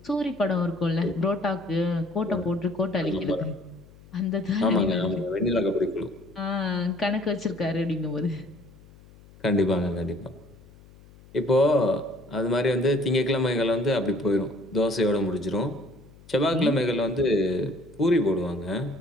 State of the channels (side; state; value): left; noise; hum, 24 dB below the sound